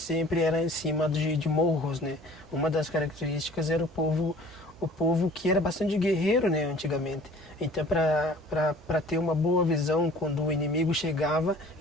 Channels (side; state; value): both; normal; correlation 0.49